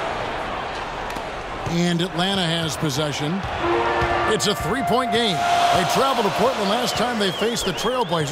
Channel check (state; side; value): identical; both; correlation 1.00